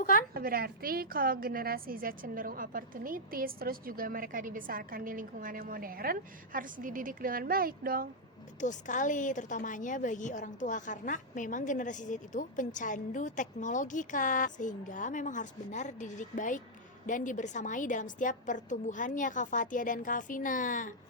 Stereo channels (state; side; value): normal; both; correlation -0.05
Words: Berarti kalau generasi Z cenderung opportunities, terus juga mereka dibesarkan di lingkungan yang modern, harus dididik dengan baik dong. Betul sekali, terutamanya bagi orang tua karena memang generasi Z itu pencandu teknologi, Kak. Sehingga memang harus benar dididik baik dan dibersamai dalam setiap pertumbuhannya, Kak Fatia dan Kak Vina.